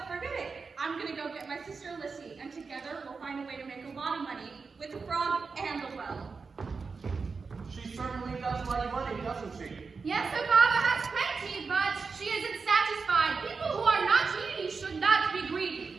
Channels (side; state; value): left; quieter; 4.8 dB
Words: Forget it. I'm gonna go get my sister Lissy, and together we'll find a way to make a lot of money with the frog and the well. She certainly does like money, doesn't she? Yes, her father has plenty, but she isn't satisfied. People who are not needy should not be